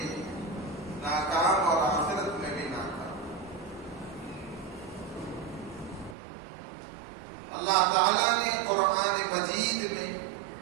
ناکام اور آخرت میں بھی ناکام. اللہ تعالیٰ نے قرآن مجید میں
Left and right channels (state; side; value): drops out; left; at 6.2 s